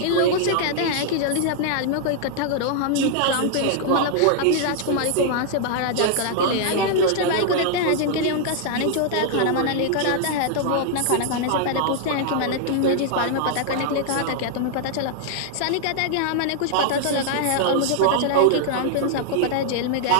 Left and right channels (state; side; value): different; both; correlation -0.01